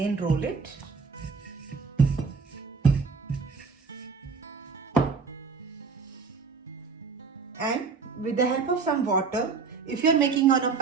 roll it. And with the help of some water, if you are making on a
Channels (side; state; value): left; quieter; 5.0 dB